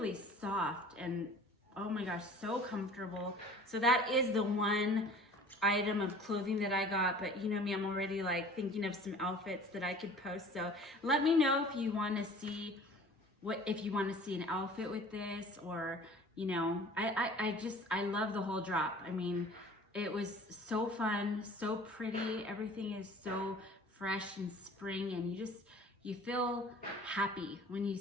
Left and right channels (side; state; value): both; normal; correlation 0.46